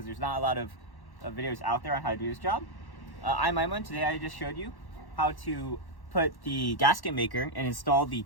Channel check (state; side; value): late; right; 1.1 ms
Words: there's not a lot of videos out there on how to do this job. I'm EyeOnAiman. Today I just showed you how to put the gasket maker and install the